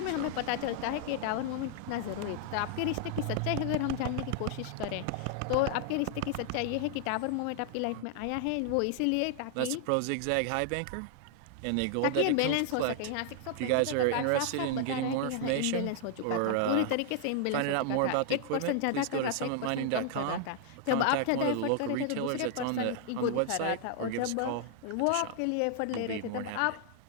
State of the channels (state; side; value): different; both; correlation 0.00